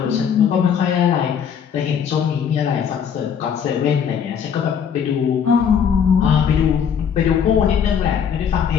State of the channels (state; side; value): quieter; right; 7.6 dB